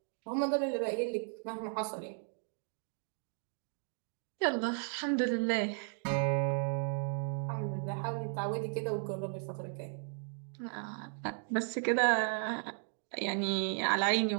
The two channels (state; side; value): silent; left; 54 dB below the other